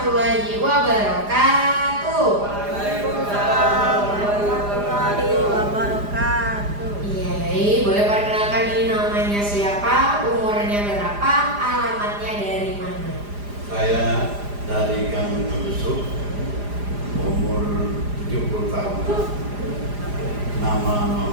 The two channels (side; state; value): left; late; 4.9 ms